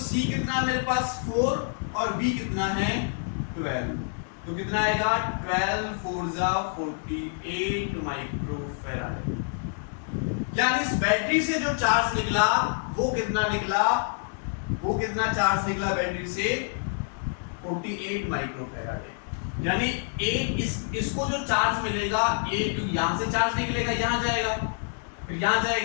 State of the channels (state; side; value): silent; right; 60 dB below the other